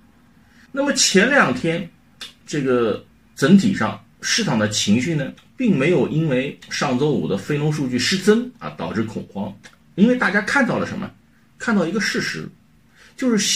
那么前2天，这个整体上市场的情绪呢，并没有因为上周五的非农数据失真导致恐慌，因为大家看到了什么？看到一个事实，就是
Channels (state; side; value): identical; both; correlation 1.00